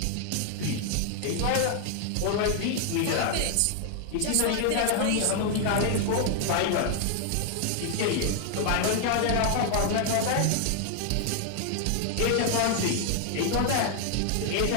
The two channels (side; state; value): both; different; correlation 0.00